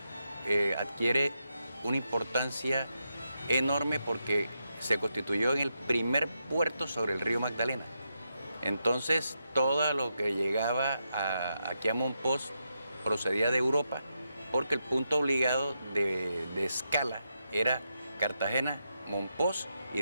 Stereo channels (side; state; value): both; inverted; correlation -0.84